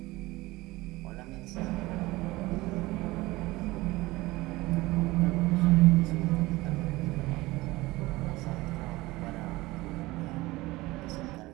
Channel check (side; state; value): left; quieter; 20.0 dB